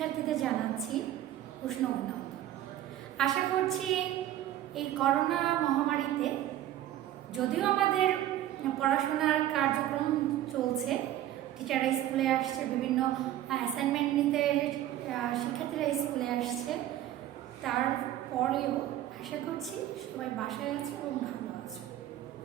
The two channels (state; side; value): quieter; left; 12.9 dB